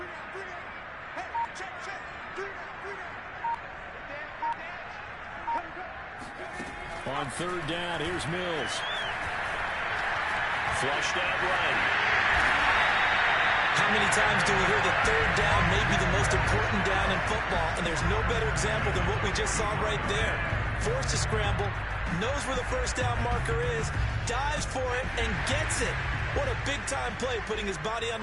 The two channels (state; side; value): identical; both; correlation 1.00